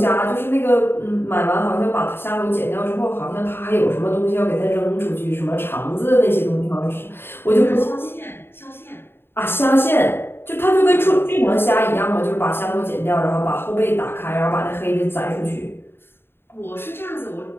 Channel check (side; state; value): right; late; 0.11 ms